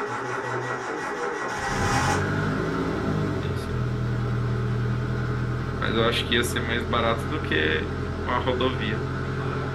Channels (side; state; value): both; identical; correlation 1.00